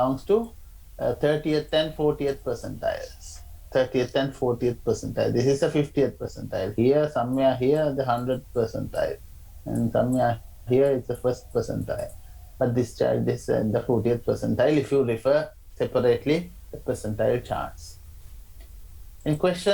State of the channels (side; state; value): both; identical; correlation 1.00